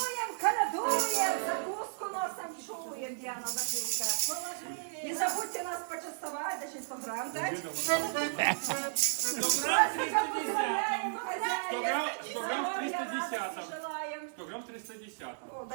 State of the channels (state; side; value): silent; left; digital silence